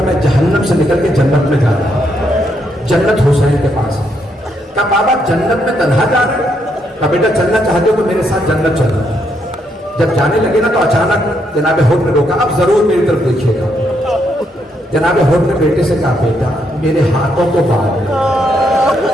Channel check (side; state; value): both; normal; correlation 0.76